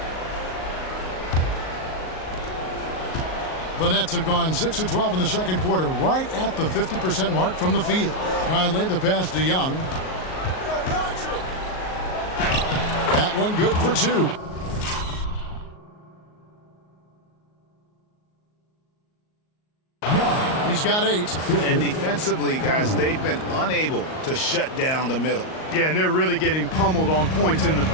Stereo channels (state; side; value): late; right; 38 ms